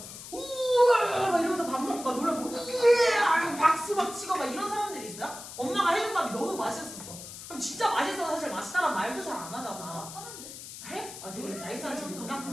우와 막 이러면서 밥 먹고 막 놀라고 우와 박수 막 치고 막 이런 사람들이 있어요. 엄마가 해준 밥이 너무 맛있었어. 그럼 진짜 맛있어서 사실 맛있다는 말도 잘 안 하잖아. 하는데. 해? 되게 나이스한 친구구나.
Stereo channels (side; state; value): left; noise; hiss, 12 dB below the sound